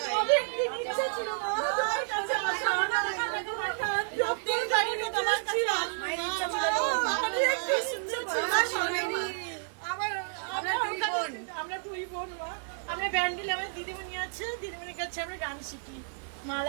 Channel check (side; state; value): left; silent; digital silence